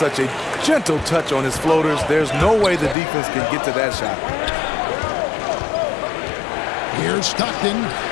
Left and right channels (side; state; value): right; drops out; at 3.0 s